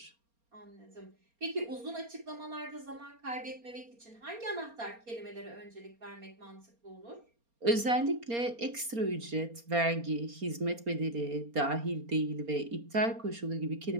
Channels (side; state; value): left; late; 4.3 ms